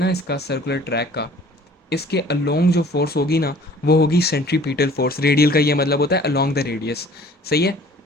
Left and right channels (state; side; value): normal; both; correlation 0.51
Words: इसका, सर्कुलर ट्रैक का, इसके अलोंग जो फोर्स होगी ना, वो होगी सेंट्रीपिटल फोर्स। रेडियल का ये मतलब होता है अलोंग द रेडियस। सही है।